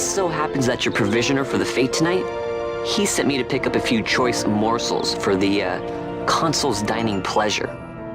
so happens that your provisioner for the fete tonight, he sent me to pick up a few choice morsels for the, Consul's dining pleasure.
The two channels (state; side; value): identical; both; correlation 1.00